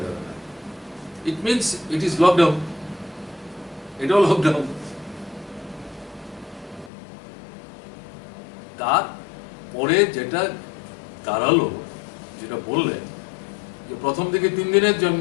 যাবে না। It means it is lockdown. এটাও লকডাউন। তারপরে যেটা দাঁড়ালো, যেটা বললেন যে প্রথম থেকে 3 দিনের জন্য,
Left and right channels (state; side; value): drops out; right; at 6.9 s